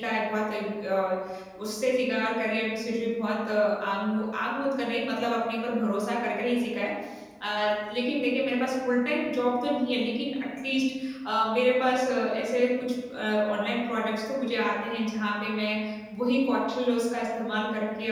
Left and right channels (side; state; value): both; identical; correlation 1.00